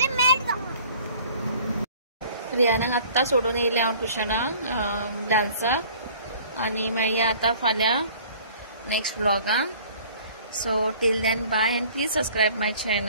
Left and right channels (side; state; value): both; inverted; correlation -0.51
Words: मैट रियानाक आत्ता सोडून येयले हांव ट्युशनाक डान्साक आनी मेळया आता फाल्यां नेक्स्ट व्लॉगाक so till then bye and please subscribe my